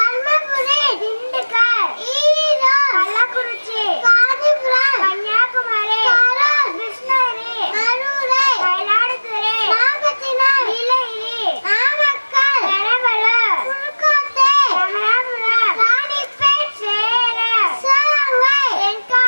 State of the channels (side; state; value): both; inverted; correlation -1.00